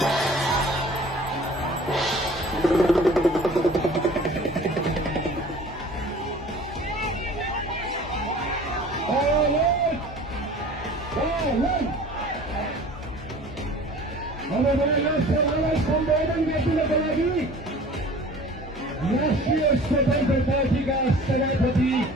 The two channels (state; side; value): normal; both; correlation 0.46